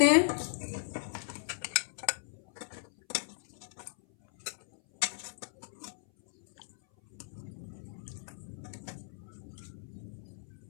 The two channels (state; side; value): silent; right; 54 dB below the other